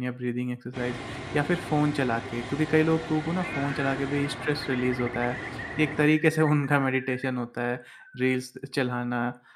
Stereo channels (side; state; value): both; identical; correlation 1.00